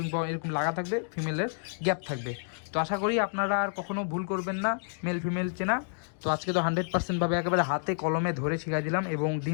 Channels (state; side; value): silent; right; digital silence